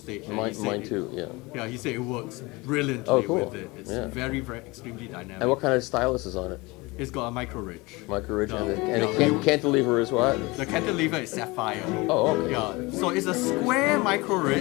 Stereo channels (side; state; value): right; quieter; 23.9 dB